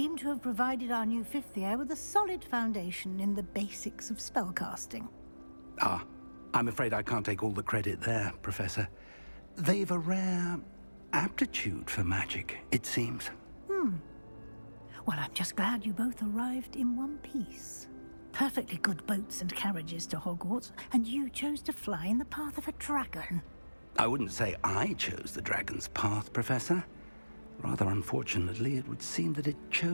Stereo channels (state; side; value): inverted; both; correlation -1.00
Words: to have provided our new fifth year with a solid foundation in the basics of spellcasting. Ah, I'm afraid I can't take all the credit there, Professor. They've a rare aptitude for magic, it seems. Well, I'm just glad you both arrived in one piece. Perfectly good boats and carriages to Hogwarts, and you chose to fly in the path of a dragon. I wouldn't say I chose the dragon's path, Professor. Rather unfortunately, it would seem that it